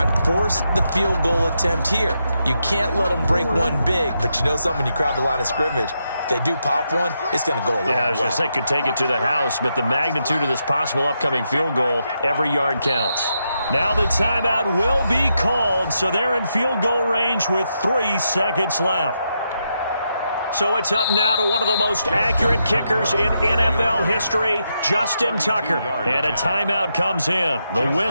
and force the field goal attempt here. You can't let them break one big, but you know something, when you crowd the line of scrimmage, if they do pop one, it's going to go a long way. Yeah, I was going to say, could take it to the house, but the magnitude of this possible upcoming field goal, every yard counts. Now the timeout will be called, so they're in field goal range with 3 seconds left. So it's up now to one of the most accurate kickers in NFL history, Justin Tucker. And a timeout comes in. The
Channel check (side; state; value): both; inverted; correlation -0.83